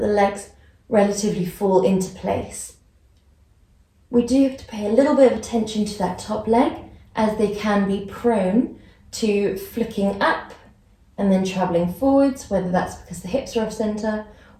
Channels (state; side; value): identical; both; correlation 1.00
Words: the legs relatively fall into place. We do have to pay a little bit of attention to that top leg, as they can be prone to flicking up and then traveling forwards, whether that's because the hips are off center